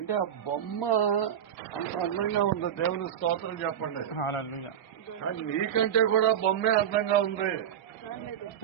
ఆ బొమ్మ అంత అందంగా ఉంది. దేవుని స్తోత్రం చెప్పండి. కానీ నీకంటే కూడా బొమ్మే అందంగా ఉంది.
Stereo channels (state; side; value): quieter; left; 9.5 dB